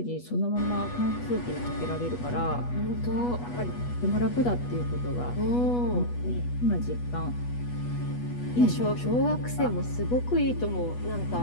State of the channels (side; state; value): right; late; 8.2 ms